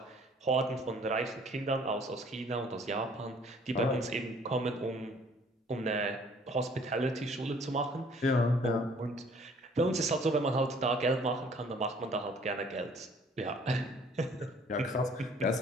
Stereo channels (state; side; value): normal; both; correlation 0.57